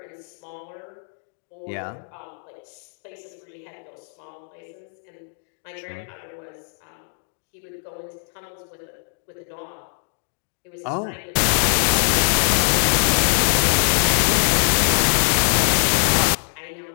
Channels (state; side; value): silent; right; digital silence